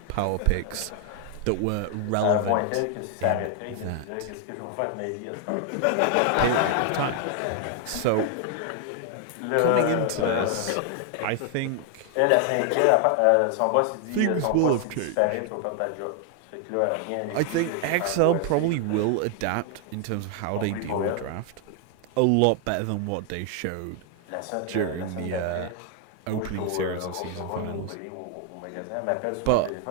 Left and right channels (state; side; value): different; both; correlation 0.00